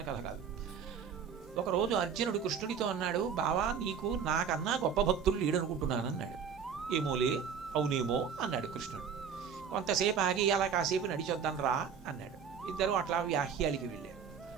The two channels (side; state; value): left; quieter; 7.0 dB